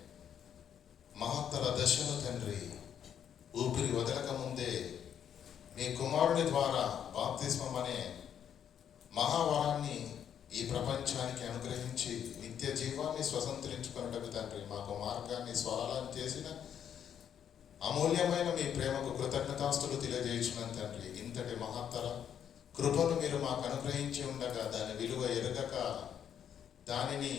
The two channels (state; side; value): quieter; right; 9.0 dB